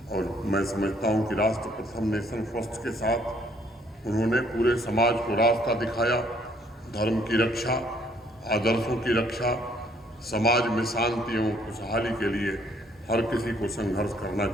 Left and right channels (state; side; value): normal; both; correlation 0.65